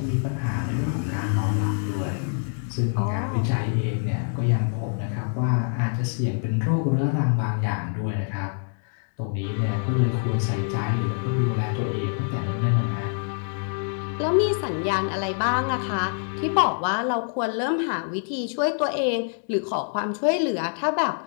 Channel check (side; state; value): right; silent; 59 dB below the other